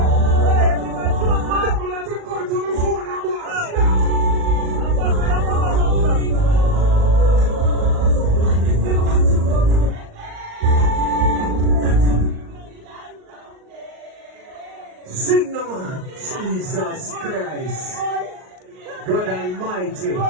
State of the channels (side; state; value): left; late; 38 ms